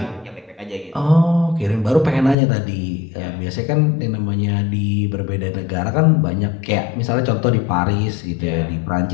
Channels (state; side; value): drops out; right; at 2.4 s